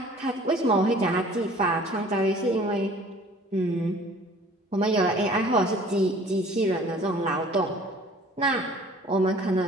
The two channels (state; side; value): normal; both; correlation 0.50